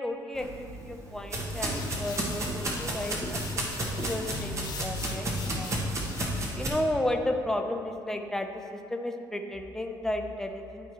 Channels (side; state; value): both; normal; correlation 0.66